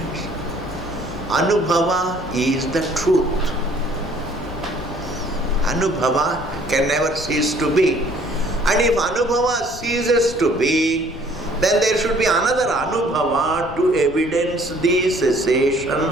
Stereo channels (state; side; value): noise; left; rumble, 16 dB below the sound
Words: Anubhava is the truth. Anubhava can never cease to be. And if Anubhava ceases to be, then there should be another Anubhava to evidence the cessation